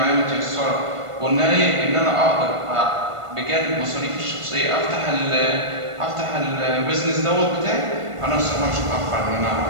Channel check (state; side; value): late; left; 1.5 ms